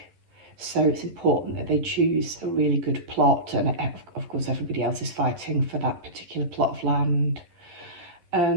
So it's important that they choose a really good plot. And of course, everybody else is fighting for that particular plot of land.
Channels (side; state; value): left; late; 11 ms